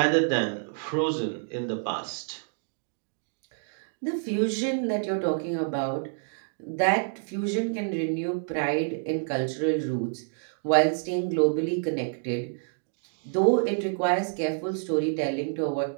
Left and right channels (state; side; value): silent; left; digital silence